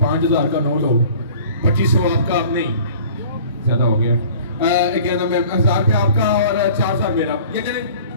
5000 का नोट हो, 2500 आपका, आप नहीं ज्यादा हो गया, क्या नाम है, 1000 रुपया आपका और 4000 मेरा, ये चले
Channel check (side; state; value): both; inverted; correlation -0.47